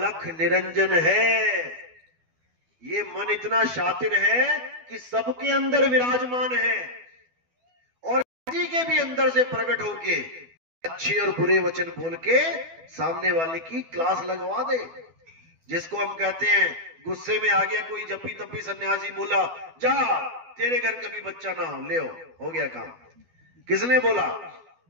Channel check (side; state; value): left; late; 12 ms